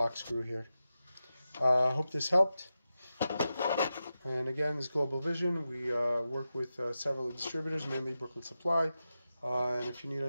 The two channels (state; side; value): inverted; both; correlation -0.91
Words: screw here. Hope this helped. And again, this is Global Vision. We work with several distributors, mainly Brooklyn Supply. And if you need